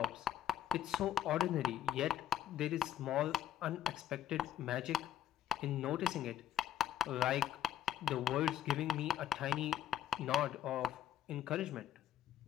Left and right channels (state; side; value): quieter; right; 10.5 dB